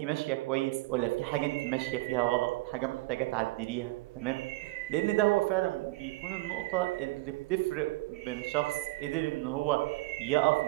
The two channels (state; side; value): quieter; left; 21.0 dB